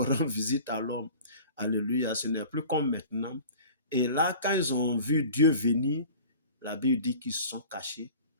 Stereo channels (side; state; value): both; inverted; correlation -0.43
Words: rendre visite à l'homme. Alléluia. Ce n'est plus comme maintenant. Et là, quand ils ont vu Dieu venir, la Bible dit qu'ils se sont cachés.